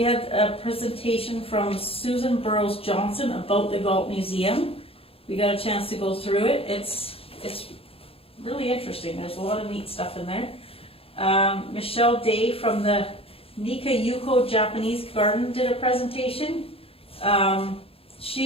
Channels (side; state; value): right; late; 0.27 ms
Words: had a presentation from Susan Burrows Johnson about the Galt Museum. We got a chance to go through it. It's really interesting. There's a lot of neat stuff in there. Michelle Day from the Nika Yuko Japanese Garden did a presentation.